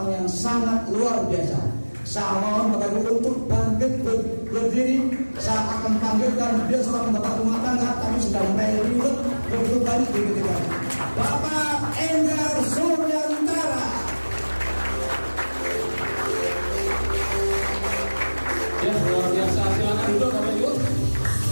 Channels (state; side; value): inverted; both; correlation -1.00